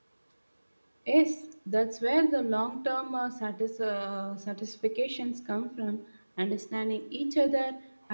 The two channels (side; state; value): both; inverted; correlation -1.00